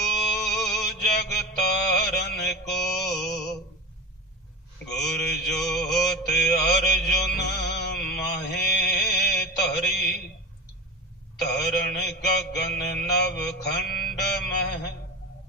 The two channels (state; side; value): normal; both; correlation 0.26